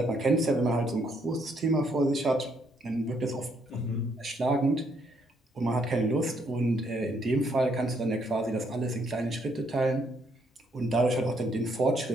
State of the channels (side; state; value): both; normal; correlation 0.71